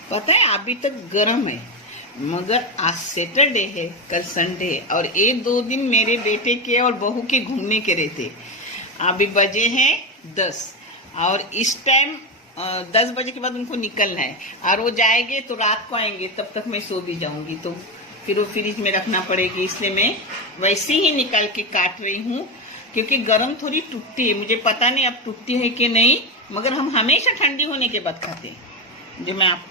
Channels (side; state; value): both; normal; correlation 0.13